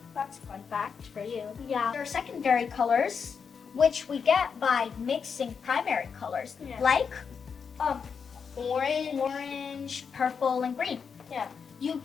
That's a fun fact for you. Yeah. There are secondary colors, which we get by mixing primary colors, Yeah. like Orange. orange, purple, and green. Yeah. You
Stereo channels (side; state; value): right; quieter; 6.2 dB